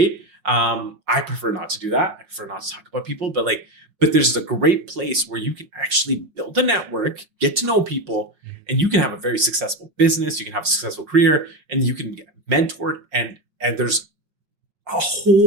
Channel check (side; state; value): left; late; 5.5 ms